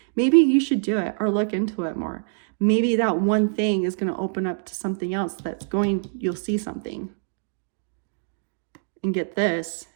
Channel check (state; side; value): silent; left; digital silence